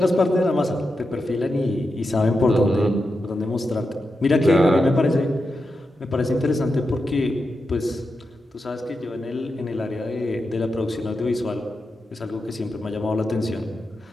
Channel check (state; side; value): normal; both; correlation 0.88